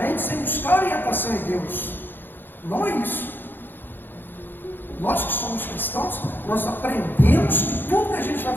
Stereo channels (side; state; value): right; late; 0.096 ms